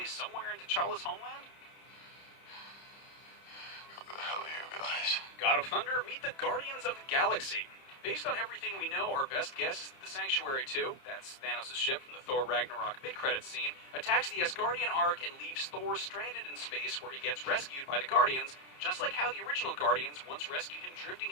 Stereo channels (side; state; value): right; late; 30 ms